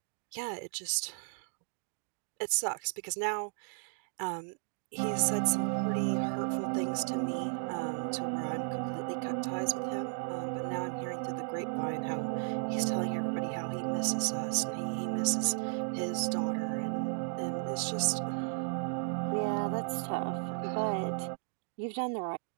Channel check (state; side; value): silent; left; digital silence